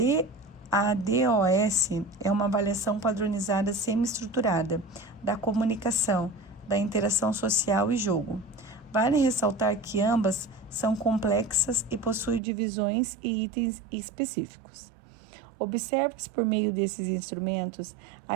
DOS é uma avaliação padronizada semi-estruturada da comunicação, da interação social e jogo. Vale ressaltar que ambas são complexas e possuem divisões e itens específicos. Observa-se por meio desses instrumentos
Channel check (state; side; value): drops out; left; at 12.4 s